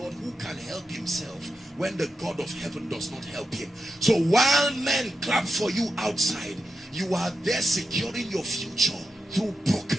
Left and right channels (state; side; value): normal; both; correlation 0.89